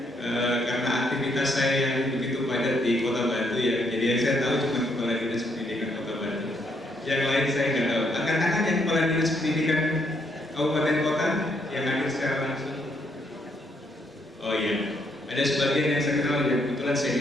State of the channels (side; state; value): both; normal; correlation 0.73